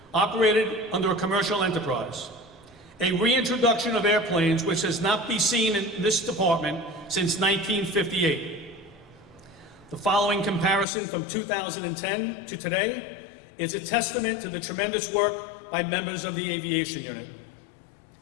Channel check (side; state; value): right; drops out; at 10.9 s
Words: operated under a commercial enterprise. A reintroduction of airplanes which has not been seen in this department since 1958. The following comparison from 2010 to today is a testament to the tremendous work by members of the Aviation Unit.